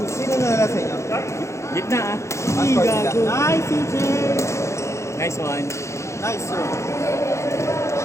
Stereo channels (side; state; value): right; late; 0.14 ms